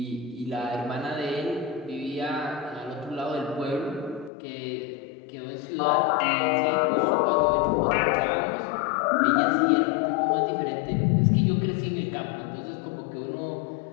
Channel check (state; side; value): drops out; right; at 4.3 s